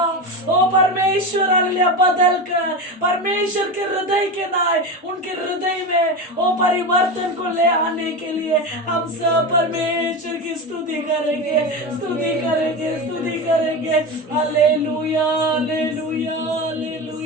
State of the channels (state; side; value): normal; both; correlation 0.22